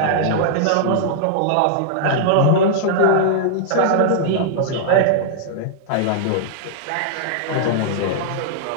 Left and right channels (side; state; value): both; different; correlation -0.02